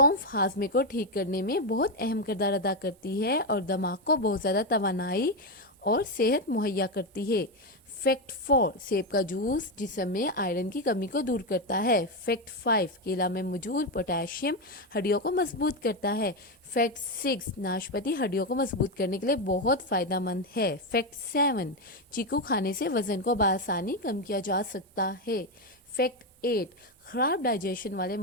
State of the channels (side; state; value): both; normal; correlation 0.08